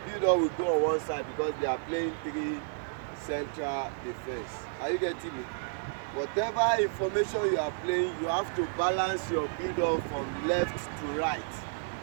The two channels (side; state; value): left; silent; digital silence